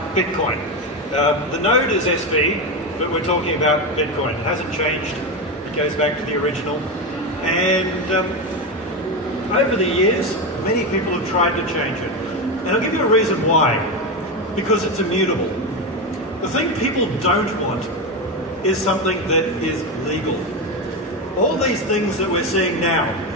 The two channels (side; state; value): both; normal; correlation 0.15